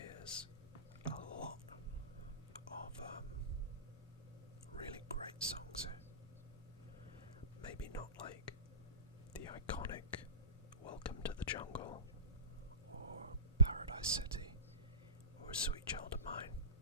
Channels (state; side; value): inverted; both; correlation -0.34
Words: is a lot of really great songs here. Maybe not like the iconic Welcome to the Jungle or Paradise City or Sweet Child of Mine,